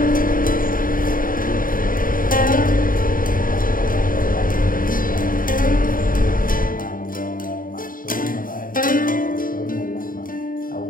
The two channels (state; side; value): late; right; 0.40 ms